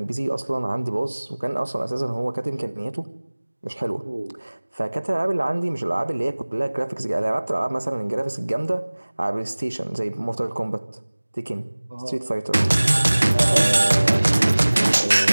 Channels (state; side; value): inverted; both; correlation -1.00